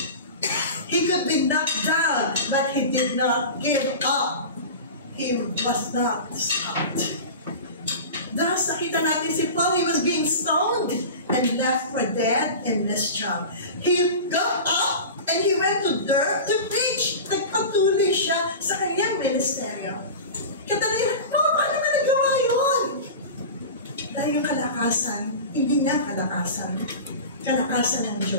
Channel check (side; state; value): both; inverted; correlation -0.31